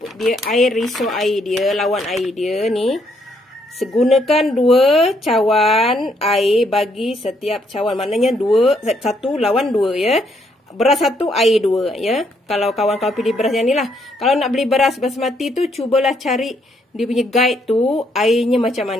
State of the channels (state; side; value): normal; both; correlation 0.72